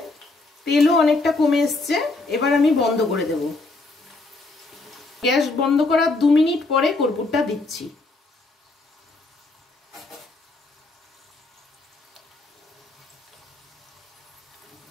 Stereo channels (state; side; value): quieter; right; 3.3 dB